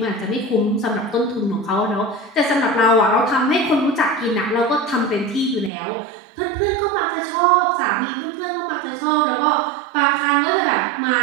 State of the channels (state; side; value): drops out; left; at 5.7 s